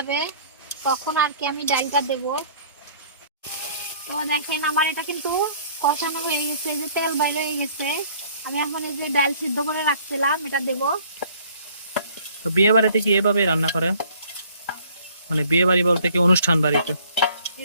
তখন আর কি আমি ডালটা দেব। তো দেখেন আমার এটা কিন্তু কষানো হয়ে গেছে, এই যে তেল বাইরে হয়ে গেছে। আমি এখন এই যে ডাল সিদ্ধ করে রাখছিলাম এটা দেব। তো বিয়ে বাড়িতে কি এভাবে রান্না করে? মানে বিয়ে বাড়ি বলতে কি অনুষ্ঠান বাড়িতে?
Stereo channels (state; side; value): inverted; both; correlation -0.56